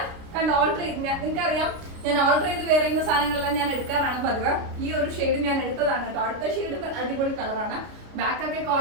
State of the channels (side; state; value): left; late; 29 ms